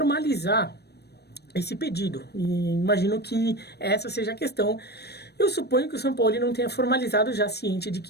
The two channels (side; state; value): right; late; 0.47 ms